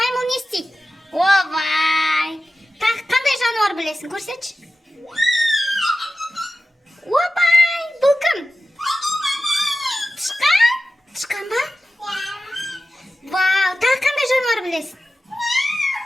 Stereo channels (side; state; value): both; normal; correlation 0.94